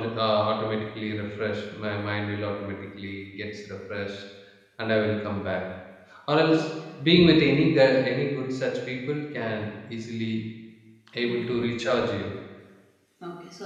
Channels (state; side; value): identical; both; correlation 1.00